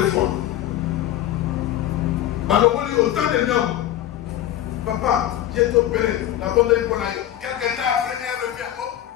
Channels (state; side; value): quieter; right; 12.5 dB